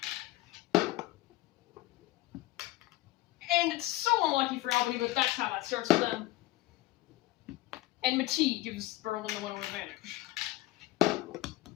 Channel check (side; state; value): right; quieter; 17.9 dB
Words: And it's so unlucky for Albany, but that's how that starts for them. And Matee gives Berlin the 1-0 advantage.